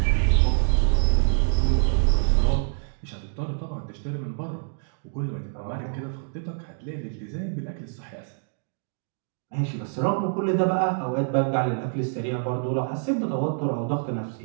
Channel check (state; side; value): silent; left; digital silence